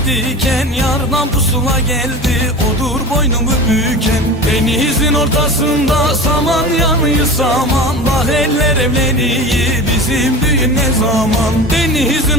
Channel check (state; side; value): normal; both; correlation 0.32